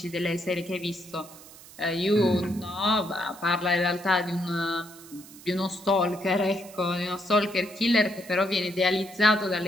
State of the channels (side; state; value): right; noise; hiss, 19 dB below the sound